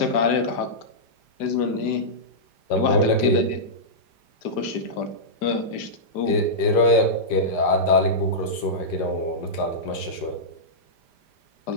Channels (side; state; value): right; late; 5.0 ms